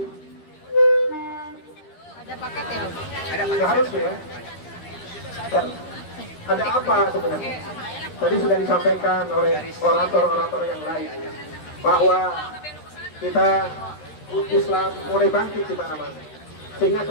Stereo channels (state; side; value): late; right; 13 ms